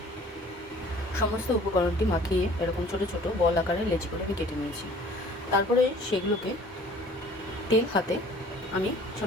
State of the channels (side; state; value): both; normal; correlation 0.51